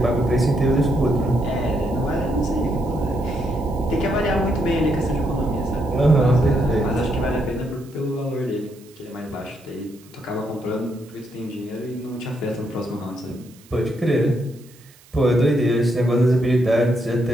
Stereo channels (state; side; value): noise; right; hiss, 26 dB below the sound